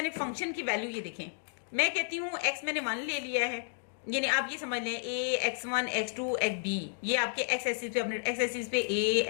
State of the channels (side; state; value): right; silent; digital silence